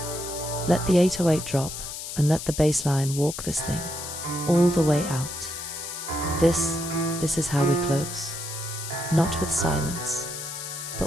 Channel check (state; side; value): noise; left; hiss, 8 dB below the sound